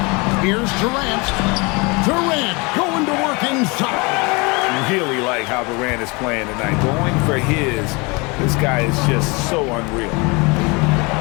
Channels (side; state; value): right; quieter; 27.6 dB